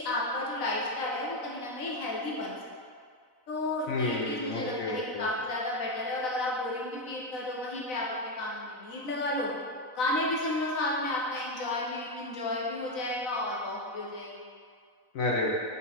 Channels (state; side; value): late; right; 4.0 ms